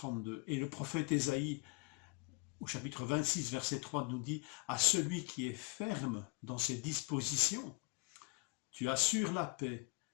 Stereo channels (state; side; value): quieter; right; 29.0 dB